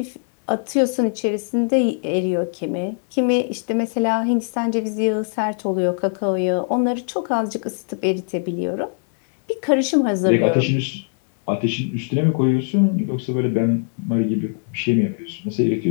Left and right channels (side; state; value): right; silent; 55 dB below the other